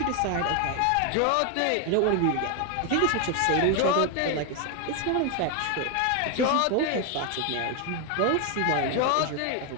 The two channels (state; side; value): different; both; correlation 0.01